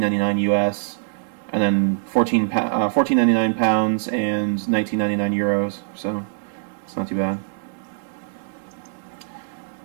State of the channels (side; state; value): left; silent; digital silence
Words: US, and then £14.99 pounds and €19.99 euros. So it's not too bad.